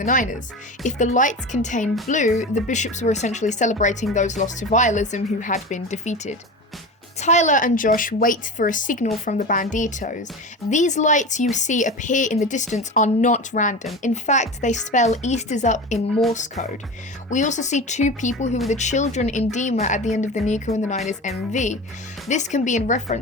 the Niners. If the lights contain blue, the bishops were essentially celebrating those lost to vialism who had been defeated. Tyler and Josh wait for a signal from the Banditos. These lights you see appear in the distance are not random. In fact, they spell East is up in Morse code. We also see two people who are the children in Dema at the end of the Nico and the Niners MV. This can be in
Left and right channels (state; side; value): normal; both; correlation 0.29